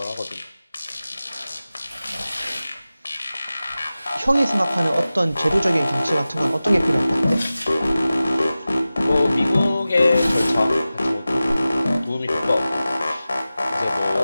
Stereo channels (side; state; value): both; inverted; correlation -0.96